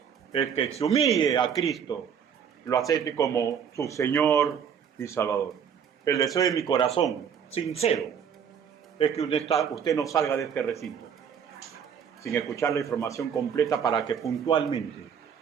es que se humille a Cristo, lo acepte como su Señor y Salvador. El deseo de mi corazón, sincero, es que usted no salga de este recinto sin escuchar la información completa para que puntualmente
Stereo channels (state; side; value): quieter; left; 7.7 dB